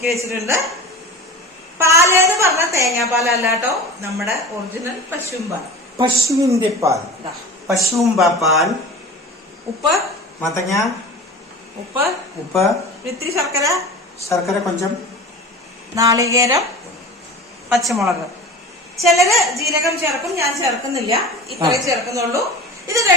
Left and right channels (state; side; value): normal; both; correlation 0.35